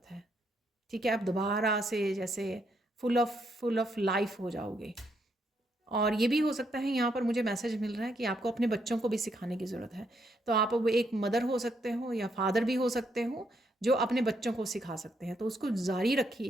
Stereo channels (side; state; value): both; normal; correlation 0.75